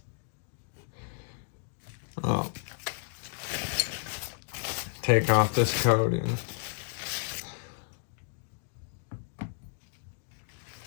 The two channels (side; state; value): right; silent; digital silence